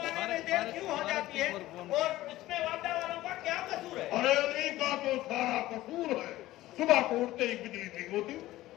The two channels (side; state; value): right; quieter; 16.1 dB